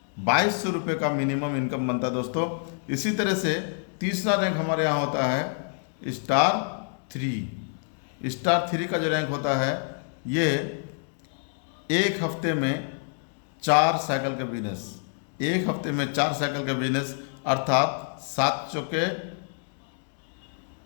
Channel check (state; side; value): silent; right; 60 dB below the other